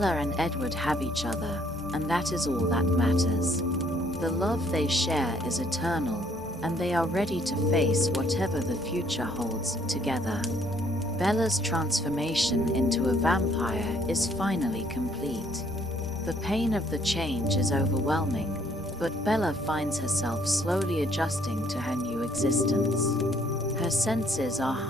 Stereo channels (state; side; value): normal; both; correlation 0.65